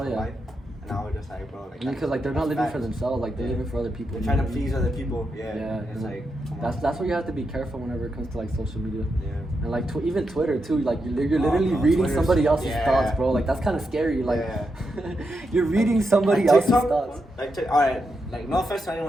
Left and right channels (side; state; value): both; normal; correlation 0.85